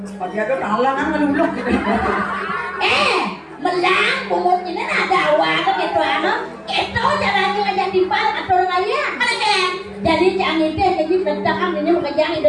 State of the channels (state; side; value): identical; both; correlation 1.00